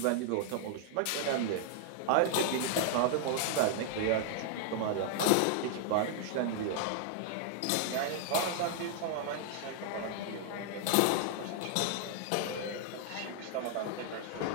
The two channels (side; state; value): both; different; correlation -0.01